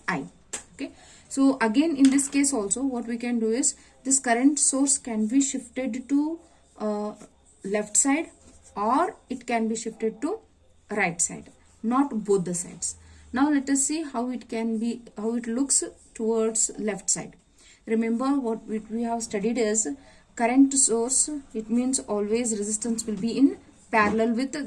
I. Okay, so again in this case also what we can do is, this current source can be shifted to left side, or it can be shifted to right side, not both the sides. Now let us see how it can be, how it looks towards left side. Remember what we have studied is, current source, it means always resistance will be in parallel with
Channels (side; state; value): both; identical; correlation 1.00